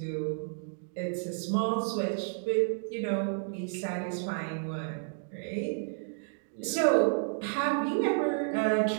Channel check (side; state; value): left; silent; digital silence